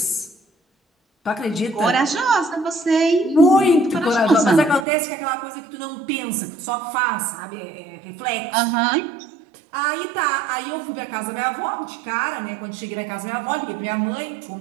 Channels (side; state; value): left; drops out; at 4.9 s